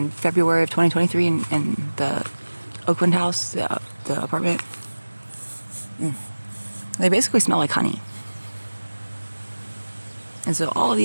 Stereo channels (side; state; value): both; inverted; correlation -1.00